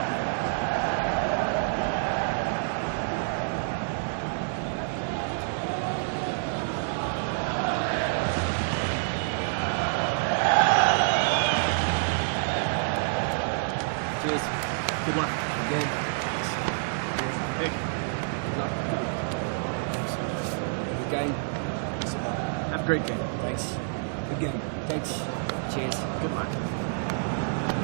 Cheers. Good luck. Good game. Cheers. Hey. Good luck. Good luck. Thanks. Good game. Have a great game. Thanks. Good game. Thanks. Cheers. Good luck.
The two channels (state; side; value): silent; left; 57 dB below the other